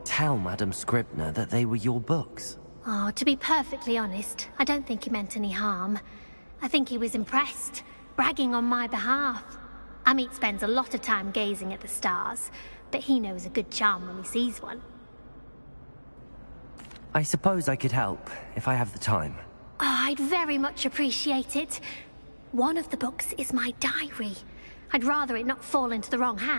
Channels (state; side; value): inverted; both; correlation -1.00